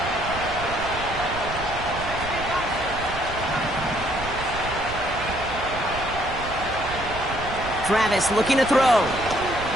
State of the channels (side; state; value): right; noise; rumble, 10 dB below the sound